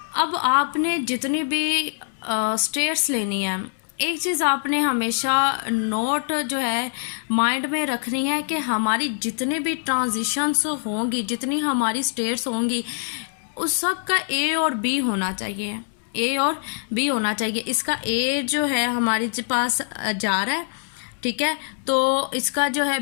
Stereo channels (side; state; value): right; silent; 63 dB below the other